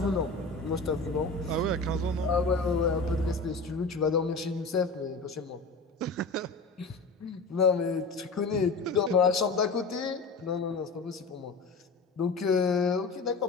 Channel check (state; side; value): quieter; right; 3.7 dB